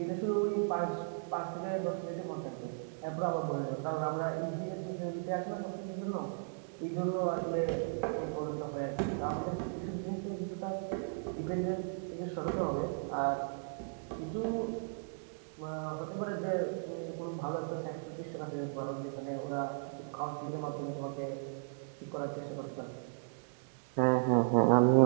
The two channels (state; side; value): silent; left; digital silence